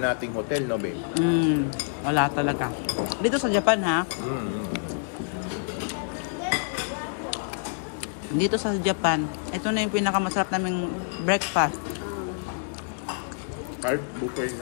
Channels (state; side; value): silent; right; digital silence